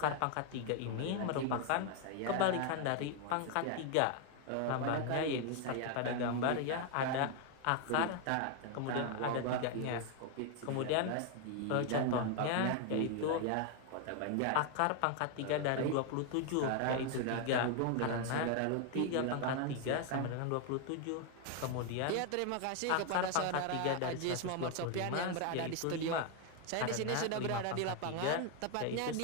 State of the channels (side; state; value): both; different; correlation 0.01